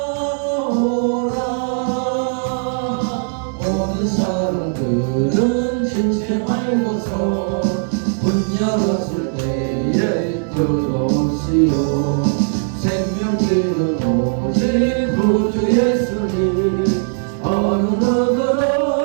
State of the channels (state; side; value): silent; left; digital silence